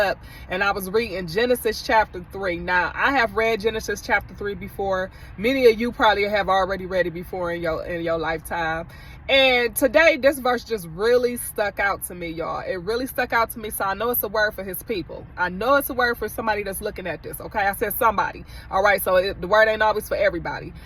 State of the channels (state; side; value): identical; both; correlation 1.00